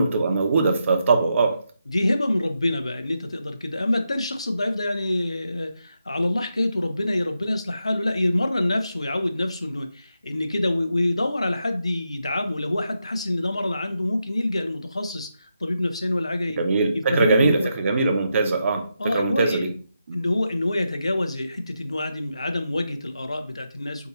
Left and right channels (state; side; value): inverted; both; correlation -0.85